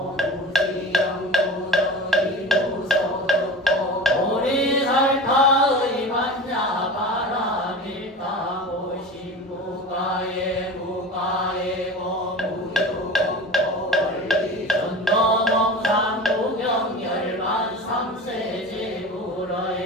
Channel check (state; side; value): normal; both; correlation 0.33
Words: 무지영무덕이 무소득고 보리살타의 만야 바라밀다고 신무가에 무가에고 무유공고 원리 전도몽산 무경열만